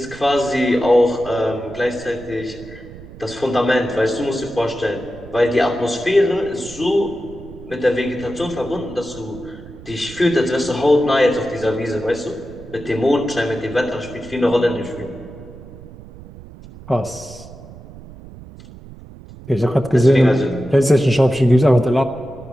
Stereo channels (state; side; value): noise; right; rumble, 17 dB below the sound